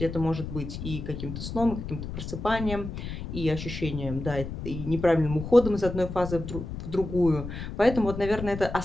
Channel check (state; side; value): noise; left; rumble, 7 dB below the sound